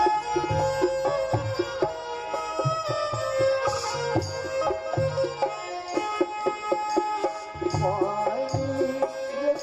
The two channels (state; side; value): identical; both; correlation 1.00